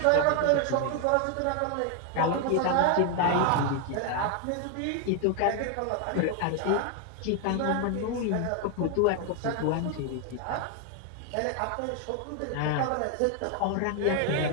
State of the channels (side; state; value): both; different; correlation 0.01